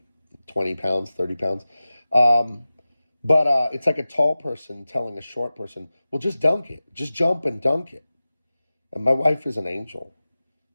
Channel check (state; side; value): inverted; both; correlation -0.96